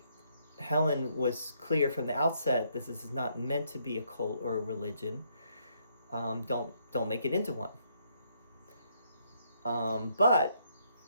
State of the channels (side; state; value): both; inverted; correlation -0.72